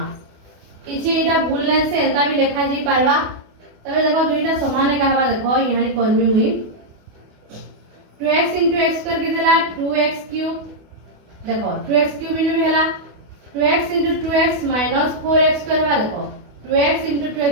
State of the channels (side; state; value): left; late; 28 ms